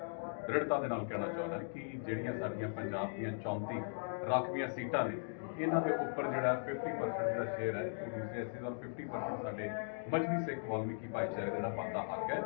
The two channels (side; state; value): right; silent; digital silence